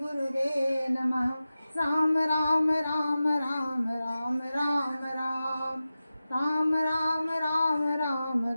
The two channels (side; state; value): both; inverted; correlation -0.94